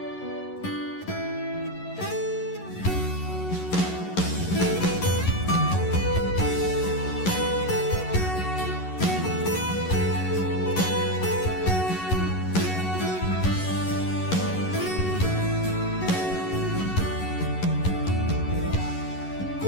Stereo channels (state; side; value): late; right; 11 ms